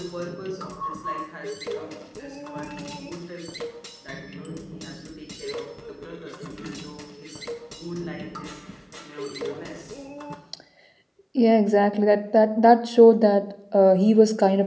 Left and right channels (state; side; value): identical; both; correlation 1.00